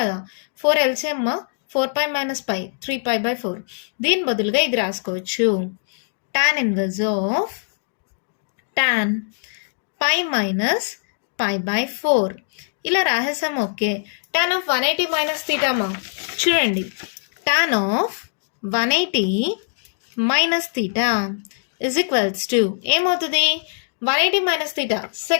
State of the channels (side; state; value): right; silent; digital silence